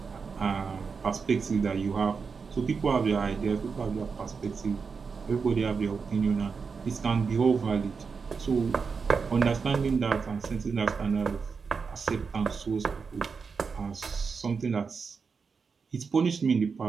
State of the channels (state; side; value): quieter; left; 5.3 dB